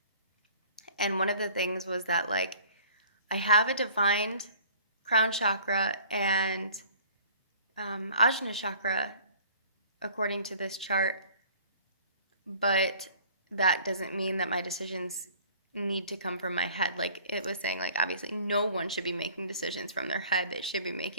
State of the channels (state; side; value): inverted; both; correlation -0.51